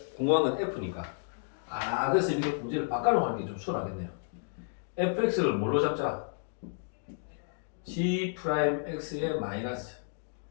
궁금한 건 F니까. 그래서 이렇게 문제를 바꿔놓고 하는 게 좀 수월하겠네요. fx를 뭘로 잡자? g 프라임 x의 마이너스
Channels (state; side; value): silent; right; digital silence